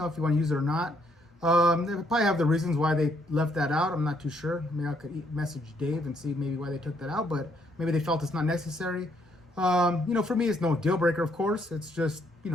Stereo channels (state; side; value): normal; both; correlation 0.70